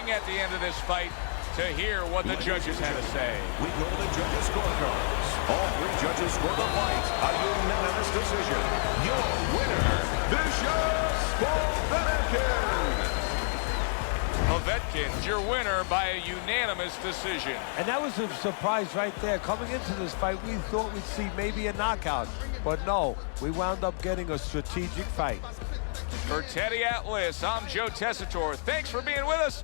at the end of this fight to hear what the judges had to say. We go to the judges' scorecards. All three judges score the fight. A unanimous decision. Your winner, Vicious Povetkin. Povetkin's your winner by a unanimous decision. And that was a surprise right there. Coming into this fight, we thought we'd see maybe a knockout. But no, we wound up getting a strategic fight. For Teddy Atlas, I'm Joe Tessitore. Thanks for being with us.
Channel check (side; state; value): right; silent; 58 dB below the other